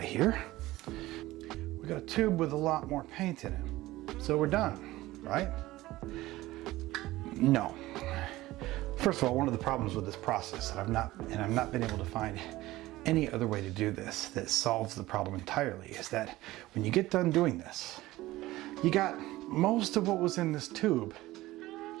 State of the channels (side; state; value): left; quieter; 17.5 dB